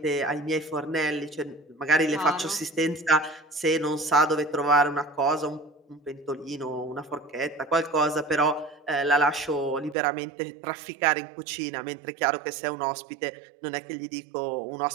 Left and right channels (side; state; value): left; drops out; at 10.0 s